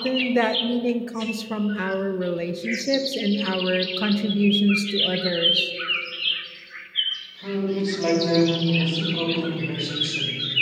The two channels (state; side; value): identical; both; correlation 1.00